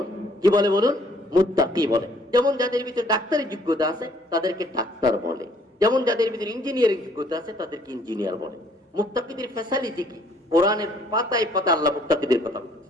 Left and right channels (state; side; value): normal; both; correlation 0.62